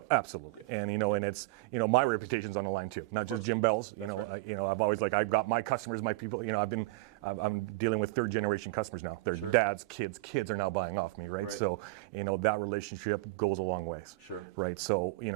Absolutely. And and it's my reputation's on the line too, not just Jim Bell's. That's right. I've always I've got my customers, my people. I'm dealing with third generation customers now. Their dads, kids are now buying off me, right? So that relationship goes a long ways. Sure. Right. So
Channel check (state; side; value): quieter; left; 21.6 dB